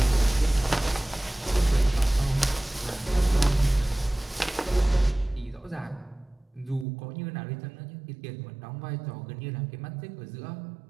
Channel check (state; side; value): drops out; left; at 6.9 s